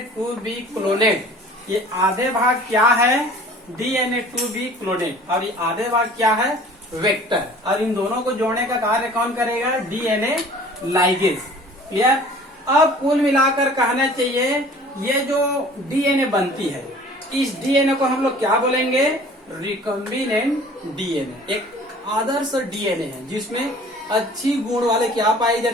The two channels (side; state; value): both; normal; correlation 0.48